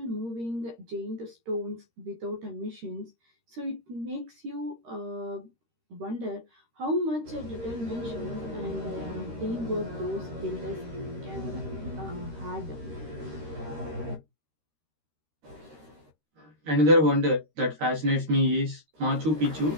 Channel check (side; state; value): left; late; 13 ms